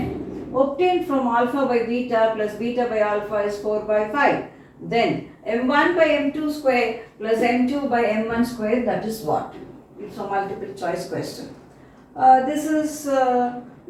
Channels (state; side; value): identical; both; correlation 1.00